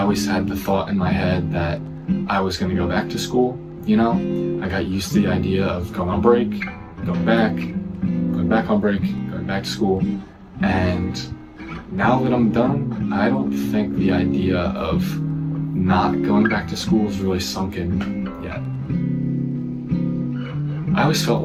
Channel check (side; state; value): both; identical; correlation 1.00